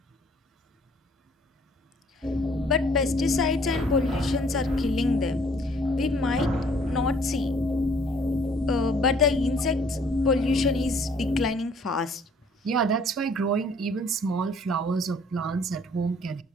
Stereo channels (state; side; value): normal; both; correlation 0.59